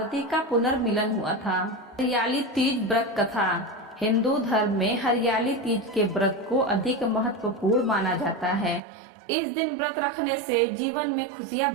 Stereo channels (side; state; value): left; drops out; at 8.8 s